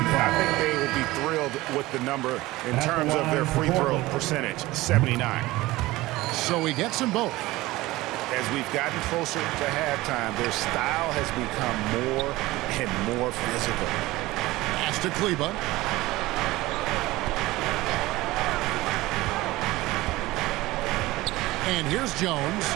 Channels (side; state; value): left; quieter; 18.9 dB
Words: think they will be thrilled with the number in terms of their free throw percentage, 79. So he gets them both. As we've gotten closer to halftime, their style has become more and more physical. Pass to Kleba. And here's Jones.